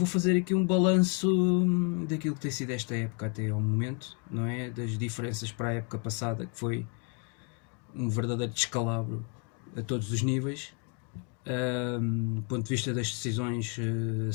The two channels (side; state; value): right; quieter; 33.4 dB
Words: fazer aqui um balanço daquilo que tem sido esta época até ao momento, não é? Das diferenças para a época passada, que foi um verdadeiro descalabro a todos os níveis. Do ponto de vista das decisões